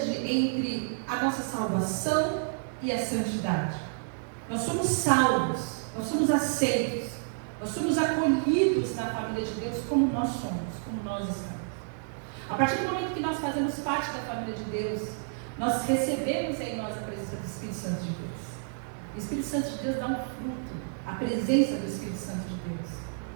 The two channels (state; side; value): silent; left; digital silence